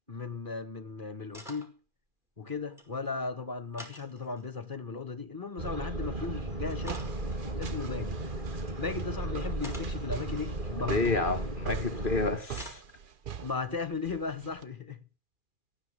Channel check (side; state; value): left; late; 2.4 ms